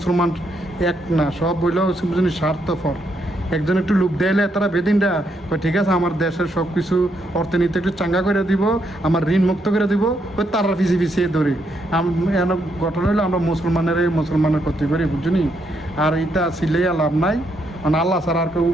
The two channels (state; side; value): normal; both; correlation 0.77